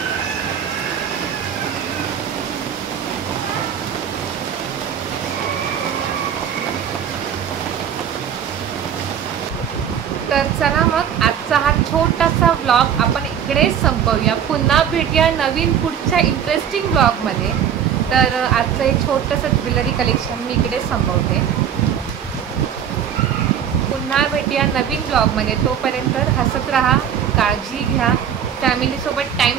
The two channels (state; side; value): quieter; left; 8.8 dB